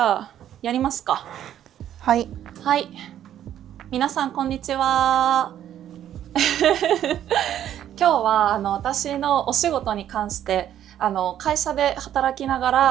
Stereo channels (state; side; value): quieter; left; 10.9 dB